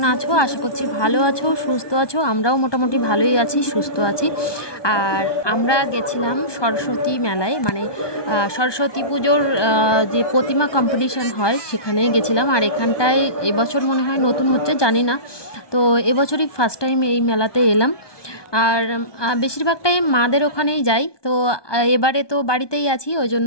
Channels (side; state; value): right; late; 1.2 ms